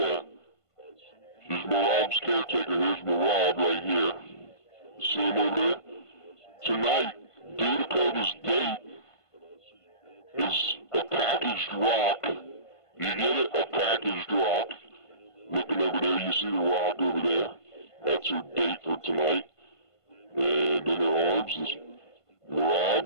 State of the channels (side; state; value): right; late; 1.5 ms